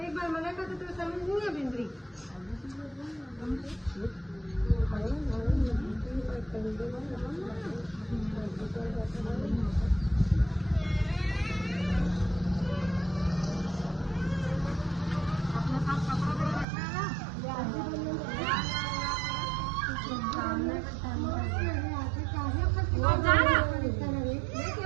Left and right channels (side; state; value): left; drops out; at 16.7 s